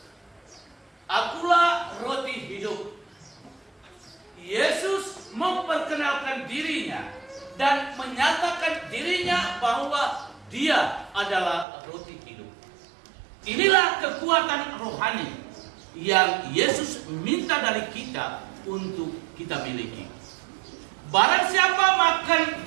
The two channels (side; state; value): left; drops out; at 11.7 s